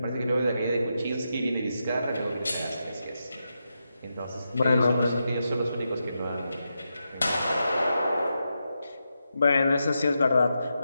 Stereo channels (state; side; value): inverted; both; correlation -0.87